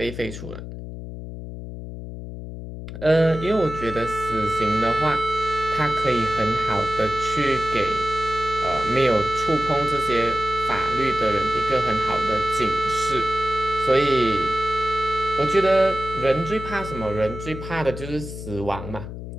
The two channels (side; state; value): left; noise; hum, 10 dB below the sound